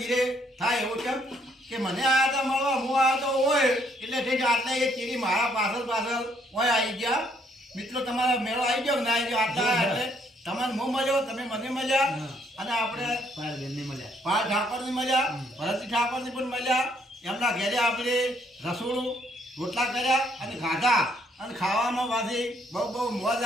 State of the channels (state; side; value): normal; both; correlation 0.68